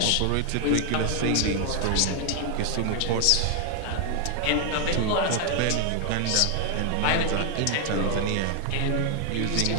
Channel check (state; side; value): different; both; correlation 0.00